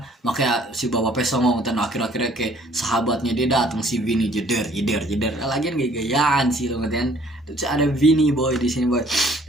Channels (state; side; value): normal; both; correlation 0.58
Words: Makanya si bapak-bapaknya songong, dan akhir-akhirnya kayak sahabatnya dia datang, si Vini jeder jeder jeder. Lagian gaya-gayaan sih lo kan. Terus ada Vini boy di sini boy.